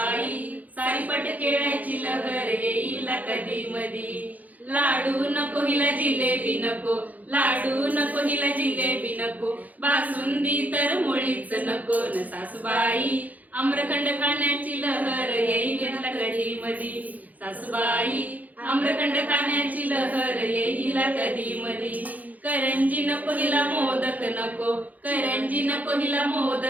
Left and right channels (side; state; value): left; late; 0.079 ms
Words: सारीपट खेळायची लहर येईल कधी मधी। लाडू नको हिला जिलेबी नको, लाडू नको हिला जिलेबी नको, बासुंदी तर मुळीच नको न। सासूबाई आम्रखंड खाण्याची लहर येईल कधी मधी। सासूबाई आम्रखंड खाण्याची लहर येईल कधी मधी। करंजी नको हिला मोदक नको, करंजी नको हिला